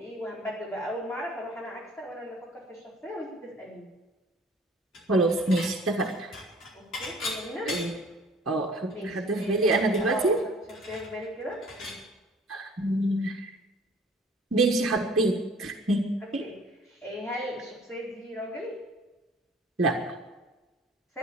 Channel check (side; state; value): both; normal; correlation 0.51